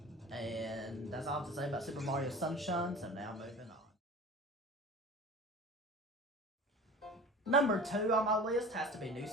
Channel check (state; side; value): normal; both; correlation 0.38